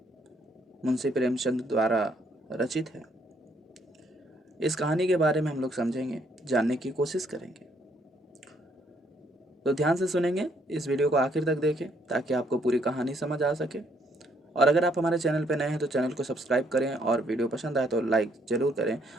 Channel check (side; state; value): both; normal; correlation 0.69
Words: मुंशी प्रेमचंद द्वारा रचित है। इस कहानी के बारे में हम लोग समझेंगे, जानने की कोशिश करेंगे। तो ध्यान से सुनेंगे, इस वीडियो को आखिर तक देखें ताकि आपको पूरी कहानी समझ आ सके। और अगर आप हमारे चैनल पर नए हैं तो चैनल को सब्सक्राइब करें और वीडियो पसंद आए तो लाइक ज़रूर करें।